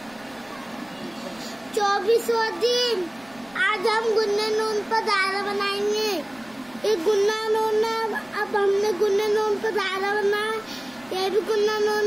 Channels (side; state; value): right; noise; rumble, 28 dB below the sound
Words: 24वां दिन। आज हम गुन्ने नून पर दायरा बनाएंगे। ये गुन्ना नून है, अब हमने गुन्ने नून पर दायरा बनाया। ये भी गुन्ना